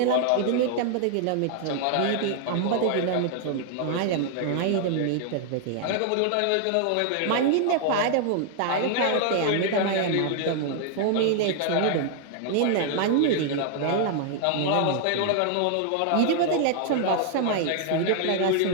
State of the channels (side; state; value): both; different; correlation 0.00